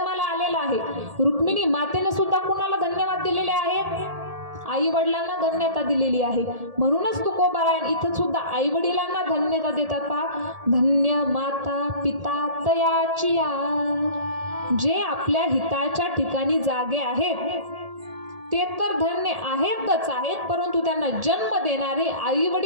आलेलं आहे. रुक्मिणी मातेने सुद्धा कुणाला धन्यवाद दिलेले आहेत? आई वडिलांना धन्यता दिलेली आहे. म्हणूनच तुकोबराय इथं सुद्धा आई वडिलांना धन्यता देतात. पहा, धन्य माता पिता तयाचिया, जे आपल्या हिताच्या ठिकाणी जागे आहेत ते तर धन्य आहेतच आहेत, परंतु त्यांना जन्म देणारे आई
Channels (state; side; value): late; left; 1.8 ms